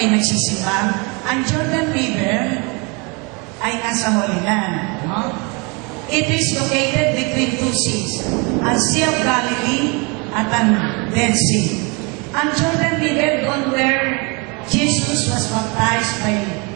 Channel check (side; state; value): left; quieter; 30.3 dB